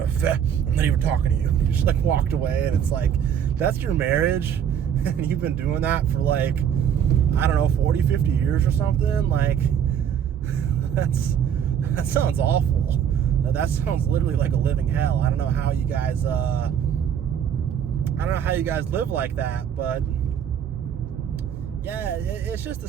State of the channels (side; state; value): left; quieter; 8.7 dB